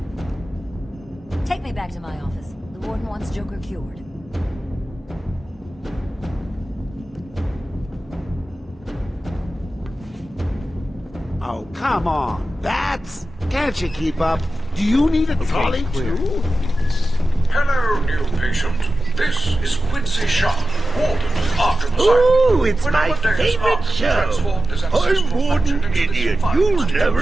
Take me back to my office. The warden wants Joker cured. Oh, come on, Bats! Can't you keep up? Do you need a trolley too? Hello, new patient. This is Quincy Sharp, Warden of Arkham Asylum. Ooh, it's my favorite show. I'm Warden Idiot. You'll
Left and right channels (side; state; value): both; normal; correlation 0.94